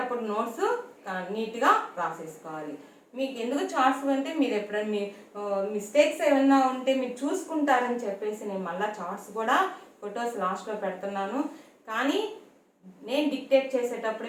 నోట్స్ నీట్గా రాసేసుకోవాలి. మీకు ఎందుకు చార్ట్స్ అంటే మీరు ఎప్పుడైనా మీ మిస్టేక్స్ ఏమైనా ఉంటే మీరు చూసుకుంటారని చెప్పేసి నేను మళ్ళీ చార్ట్స్ కూడా ఫొటోస్ లాస్ట్లో పెడుతున్నాను. కానీ నేను డిక్టేట్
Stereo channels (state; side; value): identical; both; correlation 1.00